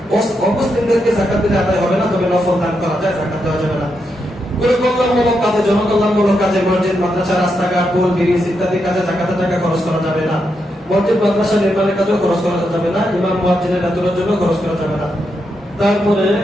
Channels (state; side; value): normal; both; correlation 0.83